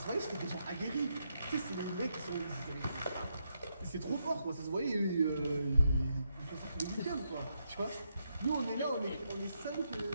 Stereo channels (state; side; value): inverted; both; correlation -0.80